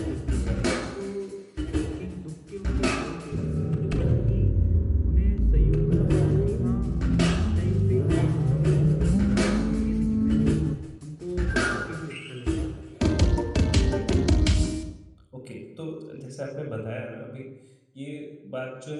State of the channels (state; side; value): identical; both; correlation 1.00